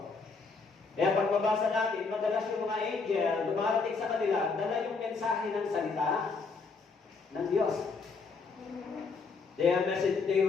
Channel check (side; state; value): right; quieter; 4.5 dB